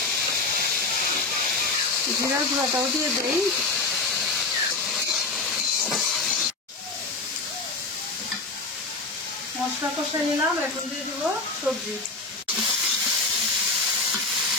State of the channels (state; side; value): quieter; right; 3.6 dB